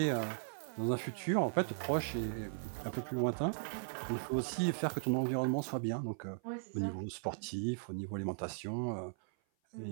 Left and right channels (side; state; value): left; silent; 53 dB below the other